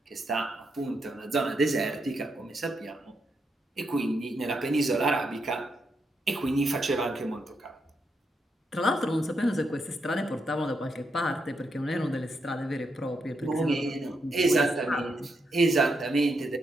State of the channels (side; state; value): both; normal; correlation 0.81